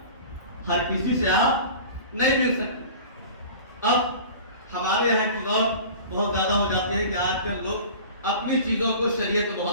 ہر کسی سے آپ نہیں مل سکتے. اب ہمارے یہاں کی دور بہت زیادہ ہو جاتے ہیں کہ آج کل لوگ اپنی چیزوں کو شریعت میں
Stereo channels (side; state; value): both; inverted; correlation -0.40